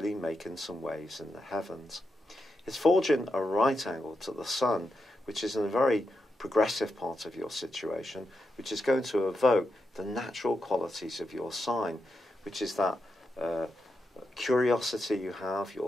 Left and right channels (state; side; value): normal; both; correlation 0.86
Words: making some waves in the heavens. It's forging a right angle to the Sun, which is in a very progressive part of your situation, which is going to evoke the natural qualities of your sign, which is that curiosity you have,